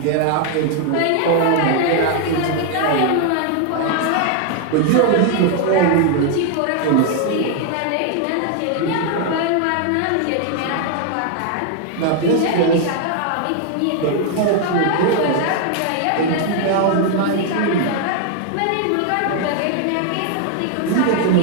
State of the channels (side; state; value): both; different; correlation 0.00